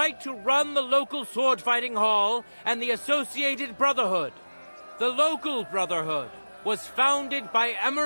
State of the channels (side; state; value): both; inverted; correlation -1.00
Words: to run the local sword-fighting hall and the associated brotherhood. The local brotherhood was founded by